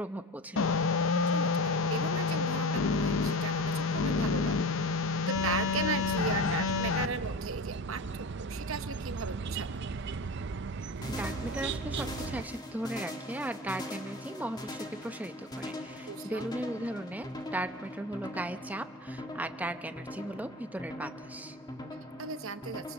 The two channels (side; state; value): both; normal; correlation 0.30